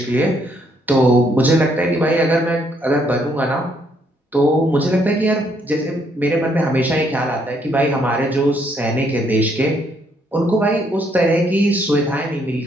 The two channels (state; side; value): normal; both; correlation 0.70